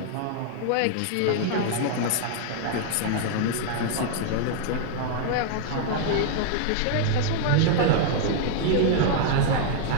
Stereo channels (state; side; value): different; both; correlation -0.01